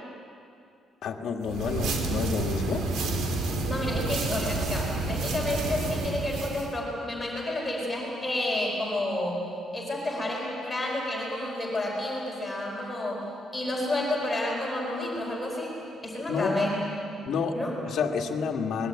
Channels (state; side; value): normal; both; correlation 0.73